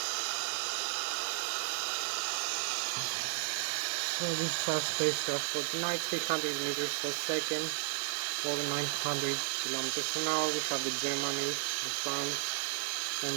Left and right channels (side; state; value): left; silent; digital silence